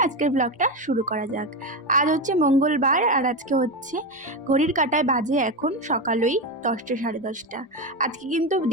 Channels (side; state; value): both; normal; correlation 0.15